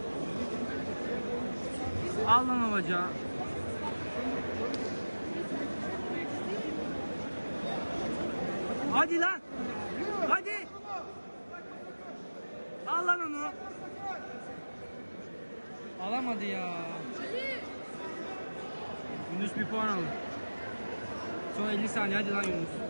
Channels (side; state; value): both; inverted; correlation -1.00